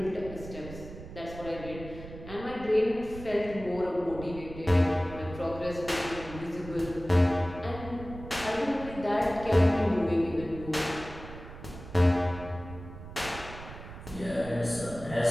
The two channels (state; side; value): noise; right; rumble, 13 dB below the sound